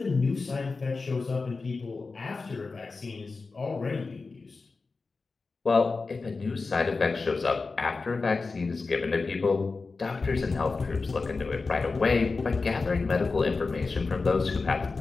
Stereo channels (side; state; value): right; quieter; 4.1 dB